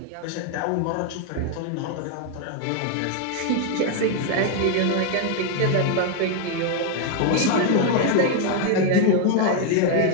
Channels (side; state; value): both; different; correlation 0.01